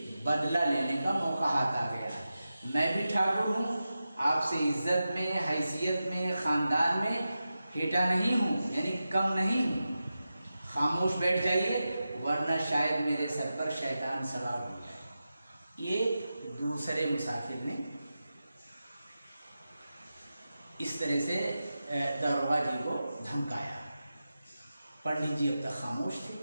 बदला लेने का मौका हाथ आ गया। मैं भी ठाकुर हूँ, आपसे इज्जत में, हैसियत में, ख़ानदान में हेटा नहीं हूँ, यानी कम नहीं हूँ। खामोश बैठ जाइए, वरना शायद मेरे सर पर शैतान सवार हो जाए। ये दूसरे मुसाफिर ने इस तरह से दरोगा जी को धमकाया। पंडित जी अब तक खामोश थे,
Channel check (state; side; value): inverted; both; correlation -0.92